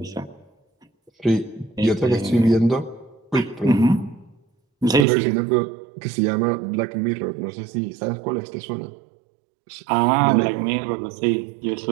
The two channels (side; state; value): left; drops out; at 5.1 s